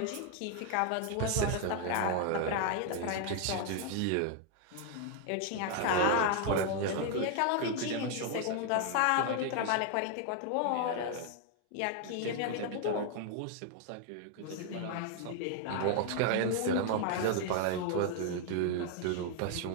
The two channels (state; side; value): different; both; correlation 0.00